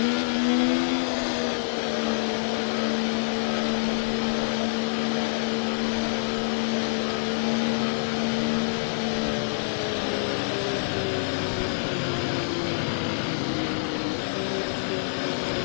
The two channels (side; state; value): right; silent; digital silence